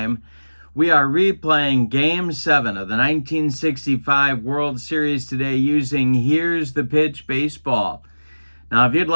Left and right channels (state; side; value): inverted; both; correlation -1.00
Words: We are replaying Game 7 of the 1965 World Series today using Here's the Pitch Baseball. Now, if you'd